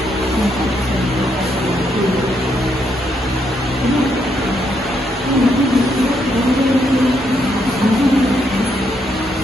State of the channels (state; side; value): normal; both; correlation 0.76